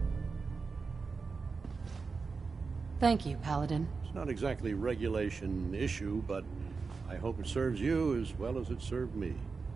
Thank you, Paladin. It's not exactly a regulation issue, but I hope it serves you as well as it served me.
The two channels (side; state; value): left; quieter; 4.7 dB